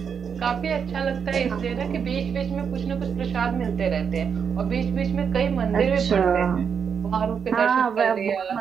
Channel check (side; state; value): left; quieter; 6.8 dB